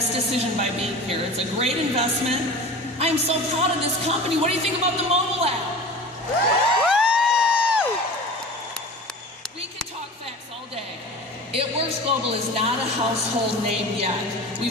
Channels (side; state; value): both; normal; correlation 0.36